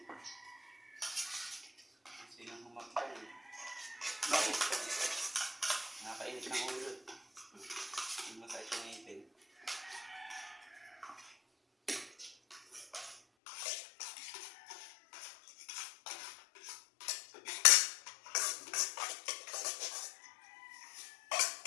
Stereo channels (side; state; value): right; drops out; at 13.2 s